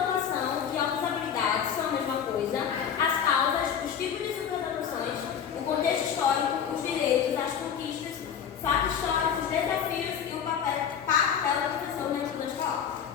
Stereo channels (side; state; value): right; quieter; 8.1 dB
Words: e outras habilidades são a mesma coisa, as causas, os tipos de superdotações, o contexto histórico, os direitos, as conquistas, fatos históricos, desafios e o papel da professora na escola escolar.